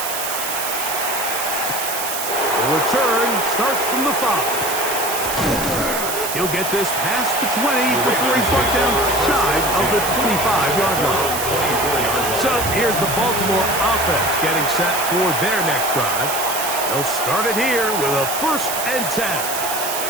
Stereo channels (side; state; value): right; noise; hiss, 4 dB below the sound